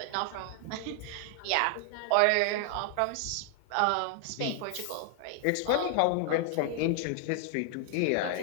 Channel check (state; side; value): different; both; correlation 0.00